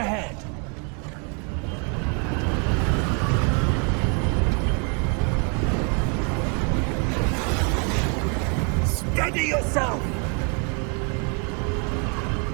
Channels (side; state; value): left; quieter; 37.1 dB